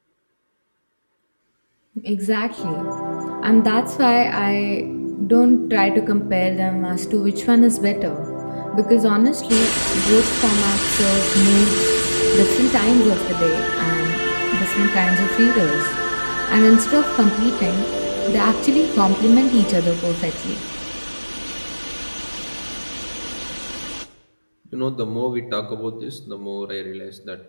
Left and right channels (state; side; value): inverted; both; correlation -1.00